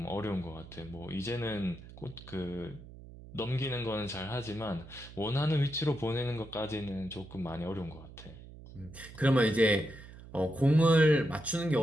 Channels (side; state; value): right; noise; hum, 17 dB below the sound